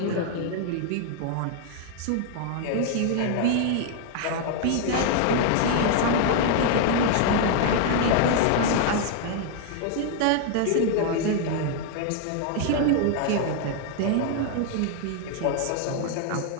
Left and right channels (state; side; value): different; both; correlation 0.00